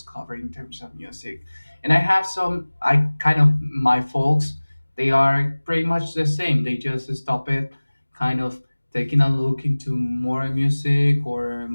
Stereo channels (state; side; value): inverted; both; correlation -1.00